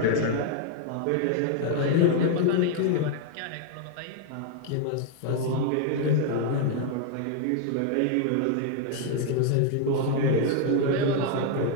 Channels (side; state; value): both; different; correlation 0.00